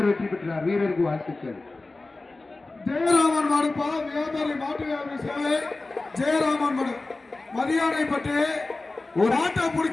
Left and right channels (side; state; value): right; quieter; 3.3 dB